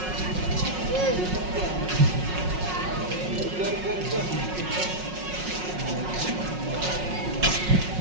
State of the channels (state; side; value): late; left; 5.5 ms